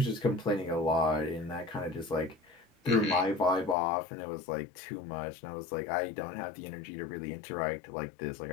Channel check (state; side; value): drops out; right; at 3.8 s